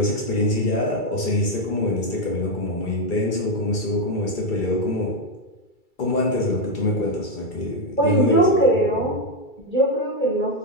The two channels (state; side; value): late; right; 2.3 ms